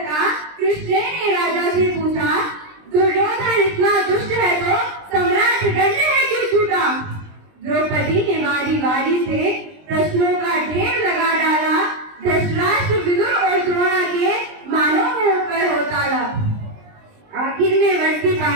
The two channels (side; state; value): left; late; 20 ms